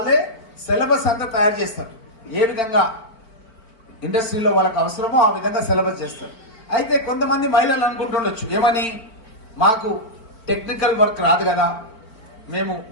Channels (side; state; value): right; late; 4.5 ms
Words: సిలబస్ అంతా తయారు చేస్తారు. ఏ విధంగా ఇండస్ట్రీలో వాళ్ళకి అవసరమో ఆ విధంగా సిలబస్ చేస్తారు. అయితే కొంతమంది మహిళలు అనుకుంటుండొచ్చు, ఏమని, మాకు టెక్నికల్ వర్క్ రాదు కదా, మేము